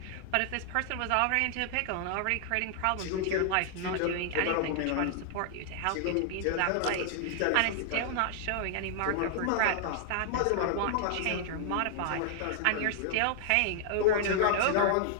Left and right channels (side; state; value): both; different; correlation 0.00